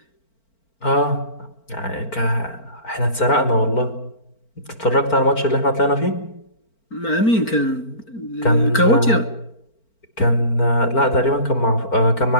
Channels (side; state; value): right; late; 4.4 ms